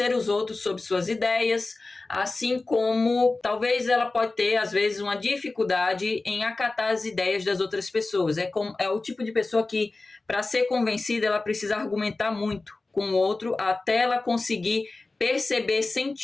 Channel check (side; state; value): right; quieter; 3.4 dB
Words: os outros sobre suas ideias, assim como talvez ela pode ter, às vezes, uma dificuldade em acatar as ideias das outras pessoas. É o tipo de pessoa que, para ser convencida, ela precisa argumentar muito com o outro até ela conseguir perceber